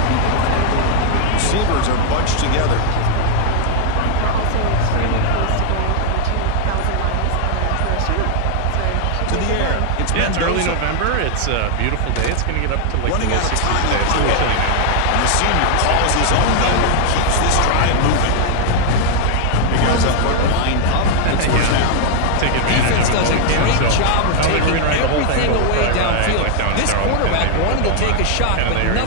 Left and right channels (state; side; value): different; both; correlation 0.00